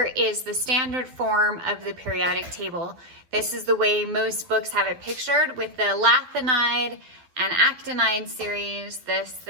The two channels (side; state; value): left; late; 12 ms